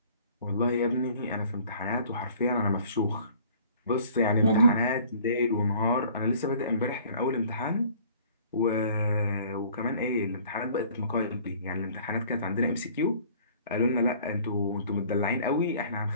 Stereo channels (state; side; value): inverted; both; correlation -0.52